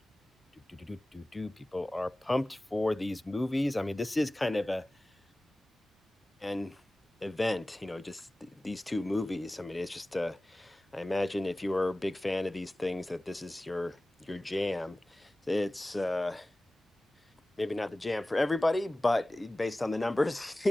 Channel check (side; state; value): both; normal; correlation 0.97